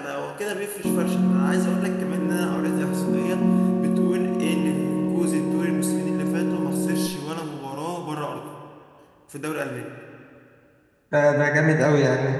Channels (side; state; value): both; identical; correlation 1.00